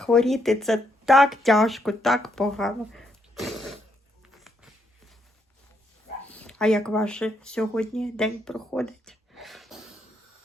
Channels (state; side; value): normal; both; correlation 0.76